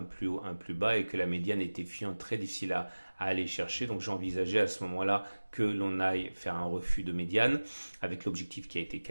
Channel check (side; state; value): both; inverted; correlation -1.00